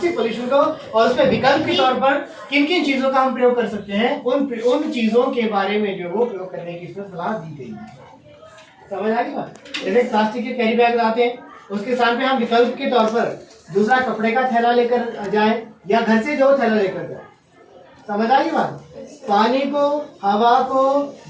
पॉल्यूशन को और उसमें विकल्प के तौर पर किन किन चीजों का हम प्रयोग कर सकते हैं, उन चीजों के बारे में जो वो प्रयोग करने की इसमें सलाह दी गई है। समझ आ गई बात? जैसे प्लास्टिक के कैरी बैग लाते हैं, उसके स्थान पे हम विकल्प के तौर पर दूसरा कपड़े का थैला लेकर जाए या घर से जो थैला लेकर जाए। समझ आ गई बात? पानी को, हवा को,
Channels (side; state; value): both; identical; correlation 1.00